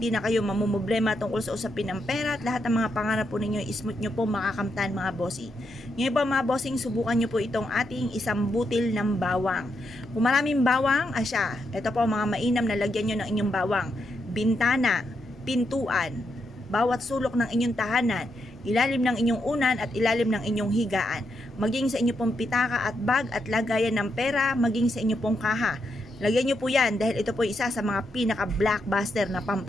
na kayo mamumblema tungkol sa usapin ng pera at lahat ng mga pangarap po ninyo, ismooth nyo po makakamtan mga bossing. Ngayon po mga bossing, subukan nyo po itong ating isang butil ng bawang. Kung maraming bawang, asya, ito po mga mainam na lagyan nyo ng inyong bawang. Bintana, pintuan, bawat sulok ng inyong tahanan, ilalim ng inyong unan at ilalim ng inyong higaan, maging sa inyong pong pitaka at bag at lagayan ng pera, maging sa inyong pong kaha. Lagyan nyo po yan dahil ito po isa sa mga pinaka-blockbuster na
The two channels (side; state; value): both; normal; correlation 0.82